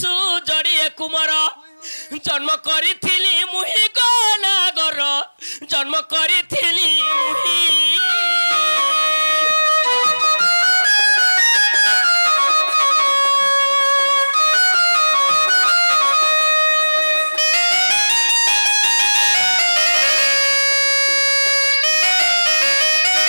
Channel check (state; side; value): inverted; both; correlation -1.00